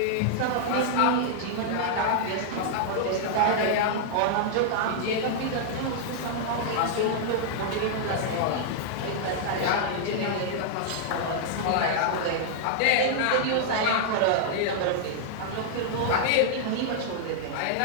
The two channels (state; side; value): different; both; correlation -0.01